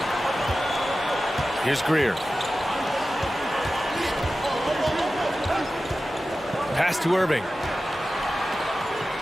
Here's Greer. Pass to Irving.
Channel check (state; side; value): normal; both; correlation 0.94